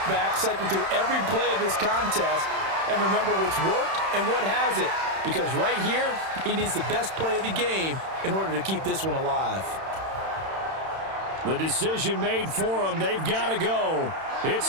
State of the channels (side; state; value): left; late; 31 ms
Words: back, cycle through every play of this contest, and remember what's worked and what hasn't. Because right here, he needs the best play of the game in order to keep this one alive. The decision made for them. They've got to go.